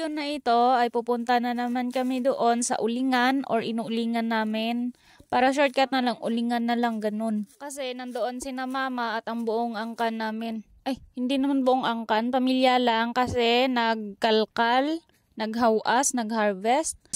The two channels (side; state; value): both; identical; correlation 1.00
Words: na ito ay pupunta na naman kami doon sa ulingan or inuulingan namin. Para shortcut na lang, ulingan na lang ganun. Kasi nandoon sina mama at ang buong angkan namin. Ay, hindi naman buong angkan, pamilya lang kasi nagkalkal, naghawas, nagharvest.